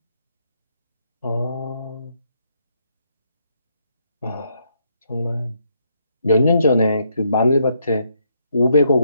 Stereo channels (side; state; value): both; inverted; correlation -0.75